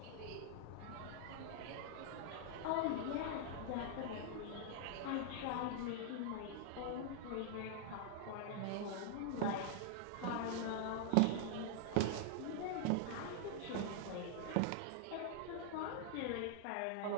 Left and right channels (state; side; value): different; both; correlation -0.01